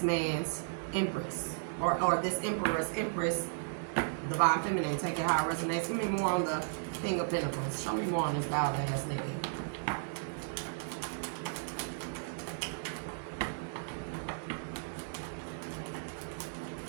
man's empress. Or this empress, divine feminine. Take it how it resonates. Give me more on the King of Pentacles. Show me more on this wild ass nigga.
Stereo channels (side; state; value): left; silent; digital silence